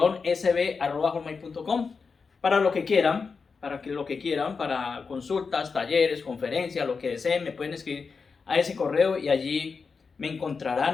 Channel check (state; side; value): quieter; right; 5.1 dB